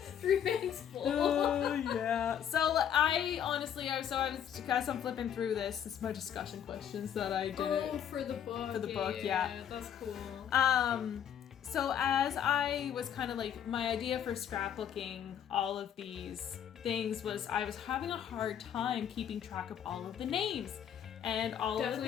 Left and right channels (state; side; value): quieter; right; 9.2 dB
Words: 3 bags full. Oh, yeah. So I honestly, as I'm flipping through this, it's my discussion questions that I did. Oh, for the book. For the book, yeah. That's cool. So as I was kind of like, my idea for scrapbooking all of these things was I was having a hard time keeping track of all of the names. And all Definitely of